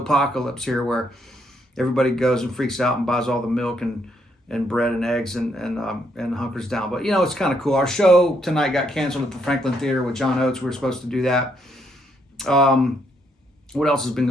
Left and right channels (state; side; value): normal; both; correlation 0.73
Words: here where everybody goes and freaks out and buys all the milk and bread and eggs and hunkers down. But, it's kind of cool. Our show tonight got canceled at the Franklin Theater with John Oates. We were supposed to do that. What else has been